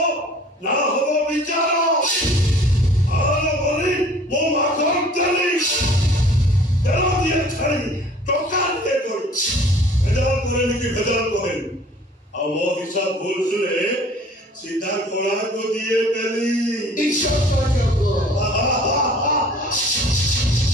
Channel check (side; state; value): both; normal; correlation 0.51